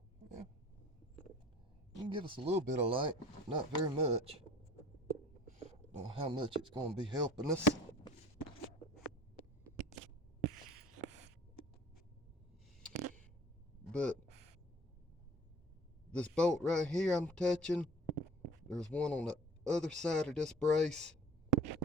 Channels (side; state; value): both; normal; correlation 0.46